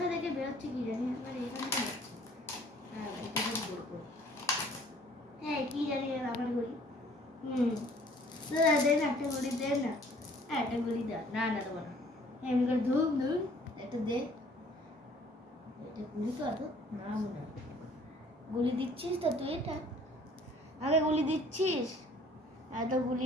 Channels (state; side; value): normal; both; correlation 0.56